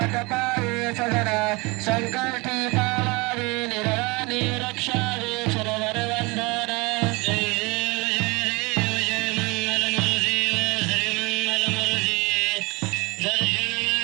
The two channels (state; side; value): quieter; left; 26.2 dB